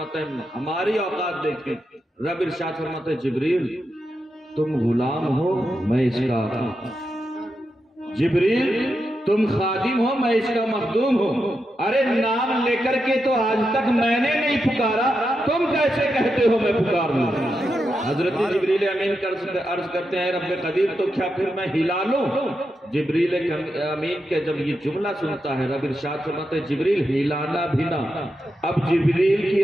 ہے ہماری اوقات دیکھیں، رب ارشاد فرماتا ہے جبریل تم غلام ہو میں اس کا آقا، جبریل تم خادم ہو میں اس کا مخدوم ہوں۔ ارے نام لے کر کے تو آج تک میں نے نہیں پکارا، تم کیسے کہتے ہو میں پکار لوں؟ حضرت جبریل امین عرض کرتے ہیں رب قدیر تو کیا پھر میں ہلا لوں؟ جبریل امین کے جب یہ جملہ سنتا ہے رب ارشاد فرماتے ہیں جبریل ہلانا بھی نہ۔ اب جبریل کی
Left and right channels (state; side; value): normal; both; correlation 0.86